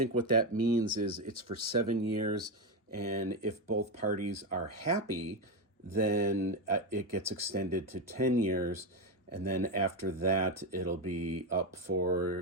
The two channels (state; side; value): normal; both; correlation 0.11